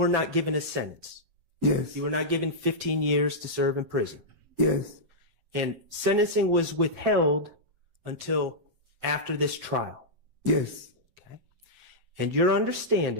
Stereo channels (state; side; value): late; left; 7.7 ms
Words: not given a sentence. Yes. You were not given 15 years to serve in prison. Yes. And sentencing was withheld until after this trial. Yes. Okay. And your